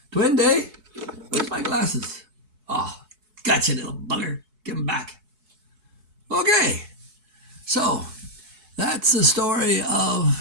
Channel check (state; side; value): late; left; 4.7 ms